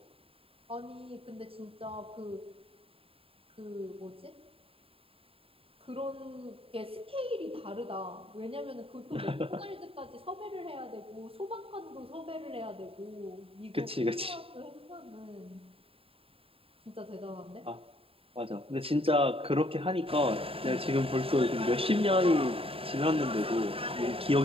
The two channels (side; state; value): left; late; 0.27 ms